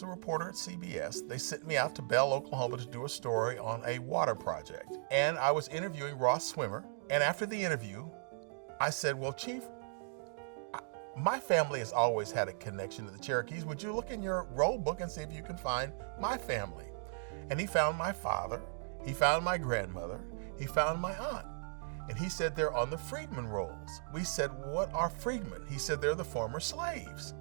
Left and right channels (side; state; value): left; silent; digital silence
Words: a reporter at CBS, they sent me out to Bell, Oklahoma to do a story on a water project. And I was interviewing Ross Swimmer. And after the interview, I said, well, Chief, my family has always had a connection to the Cherokees. Would you look in your roll book and see if you can find my family? And he found my father, he found my grandmother, he found my aunt. And he said they're on the freedmen rolls. We said, what are freedmen? He said they're the former slaves.